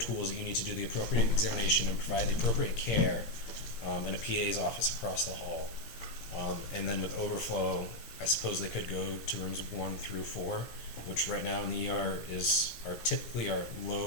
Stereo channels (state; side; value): late; right; 17 ms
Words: that you need to do the appropriate examination and provide the appropriate care, in a PA's office across the hall. And then with overflow, I suppose they could go to rooms 1 through 4, which right now in the ER are typically our